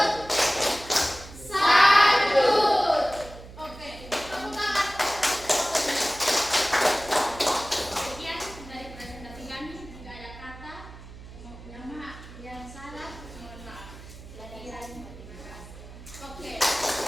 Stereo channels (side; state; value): right; noise; hum, 16 dB below the sound